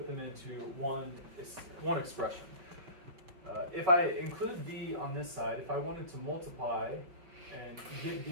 them into one expression. If I include V on this side, if I wanted to multiply and get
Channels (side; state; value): left; late; 5.4 ms